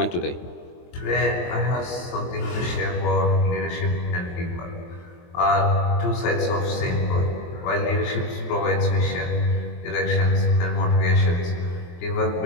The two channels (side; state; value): right; late; 23 ms